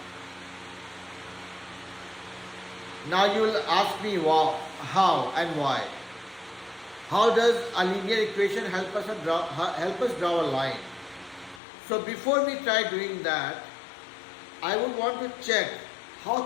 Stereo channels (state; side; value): drops out; right; at 11.6 s